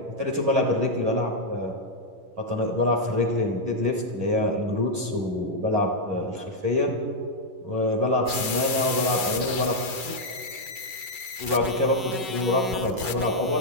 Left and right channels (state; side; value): late; left; 11 ms